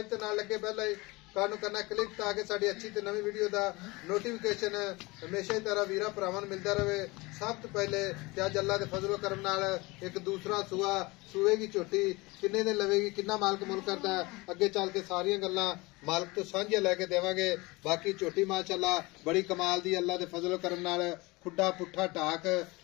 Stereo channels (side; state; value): right; quieter; 23.5 dB